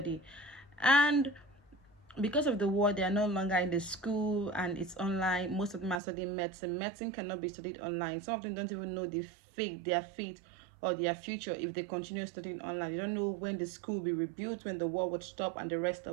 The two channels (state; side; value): drops out; left; at 6.0 s